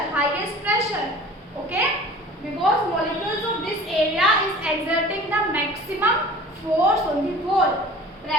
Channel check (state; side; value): normal; both; correlation 0.43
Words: highest pressure. Okay. Because molecules of this area is exerting the maximum force on the wall.